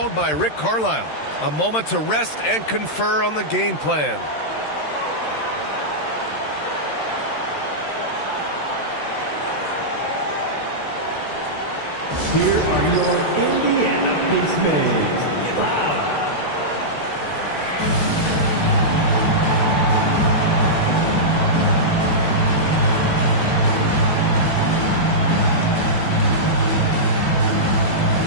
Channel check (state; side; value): late; right; 13 ms